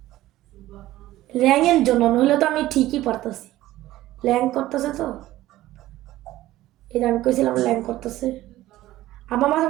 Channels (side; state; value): left; quieter; 15.6 dB